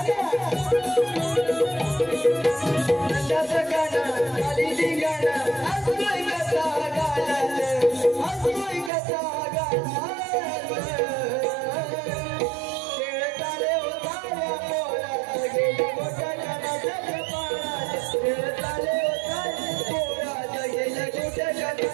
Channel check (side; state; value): left; drops out; at 8.9 s